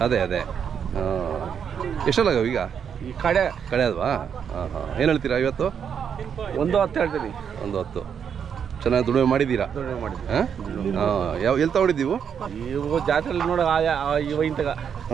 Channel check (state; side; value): quieter; left; 7.6 dB